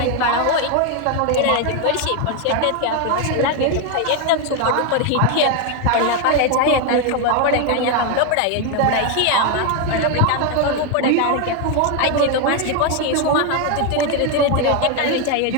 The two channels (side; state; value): both; different; correlation 0.01